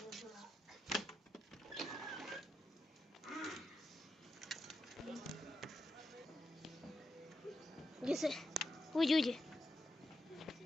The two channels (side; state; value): both; normal; correlation 0.86